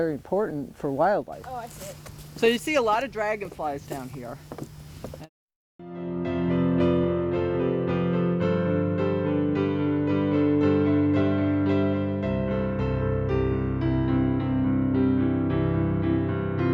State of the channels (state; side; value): identical; both; correlation 1.00